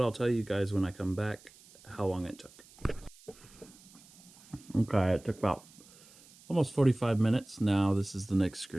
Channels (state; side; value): noise; right; hiss, 24 dB below the sound